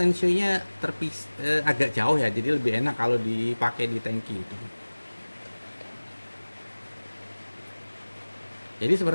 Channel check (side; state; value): both; inverted; correlation -1.00